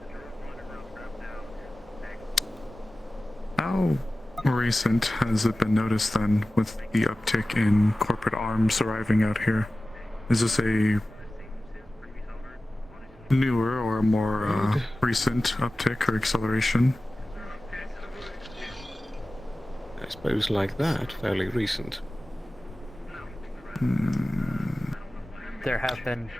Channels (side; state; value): both; normal; correlation 0.96